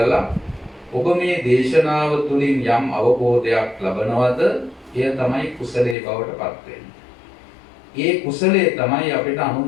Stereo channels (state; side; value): drops out; right; at 6.0 s